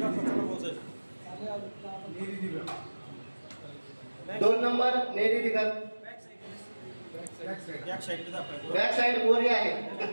2 number Neri Digat. Back side गोरी आहे.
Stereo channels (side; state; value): both; inverted; correlation -1.00